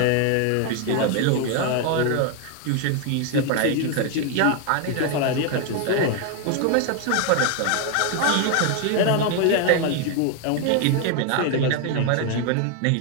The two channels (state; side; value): different; both; correlation 0.01